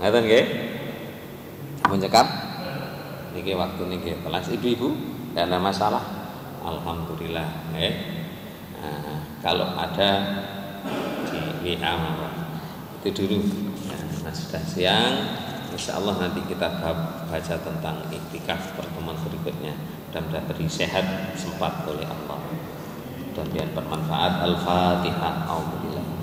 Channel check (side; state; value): both; identical; correlation 1.00